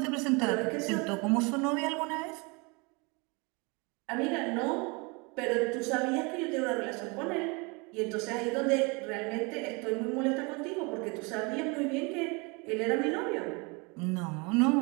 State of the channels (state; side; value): quieter; left; 29.2 dB